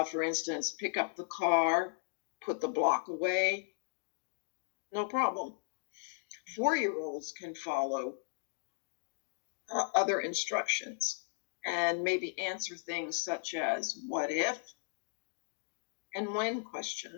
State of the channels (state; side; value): silent; right; digital silence